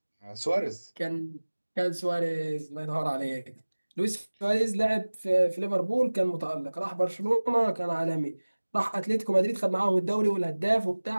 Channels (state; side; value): inverted; both; correlation -1.00